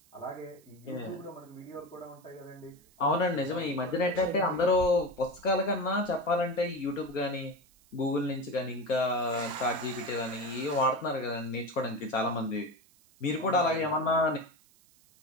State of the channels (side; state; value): right; noise; hiss, 30 dB below the sound